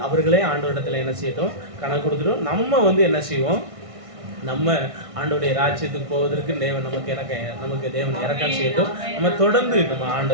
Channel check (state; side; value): late; left; 1.6 ms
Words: அவர்களே ஆண்டவரிடத்தில் என்ன செய்யட்டும், கணக்கு கொடுத்துட்டோம். நம்ம என்ன செய்வோம், நம்ம ஆண்டவருடைய ராஜ்யத்துக்கு போவதற்கு தேவன் நமக்கு தேவன் இரக்கம் செய்யட்டும். நம்ம தொடர்ந்து நம்ம